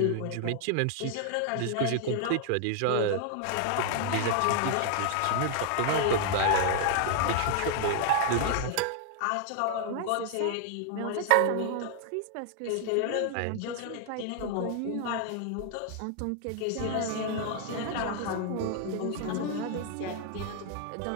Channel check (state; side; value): different; both; correlation 0.00